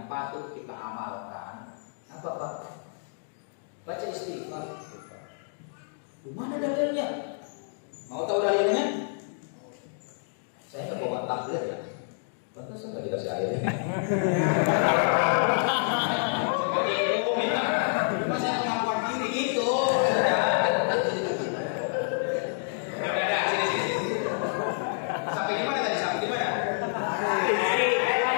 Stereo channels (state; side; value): silent; right; digital silence